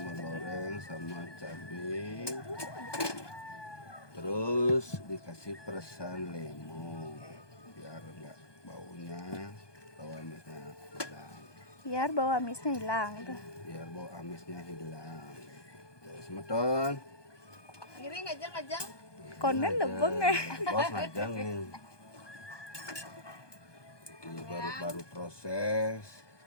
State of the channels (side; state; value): right; late; 1.2 ms